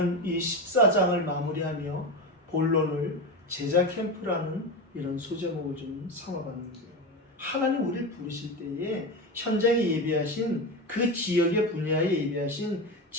이 14장을 마무리하며 본론을 제자 캠프라는 이런 소제목을 좀 삼아봤는데요. 하나님 우리를 부르실 때에 현장에 예비하신 그 지역의 분야에 예비하신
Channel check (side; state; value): both; normal; correlation 0.20